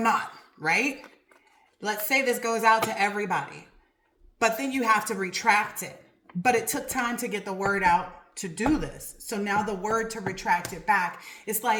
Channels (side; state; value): both; identical; correlation 1.00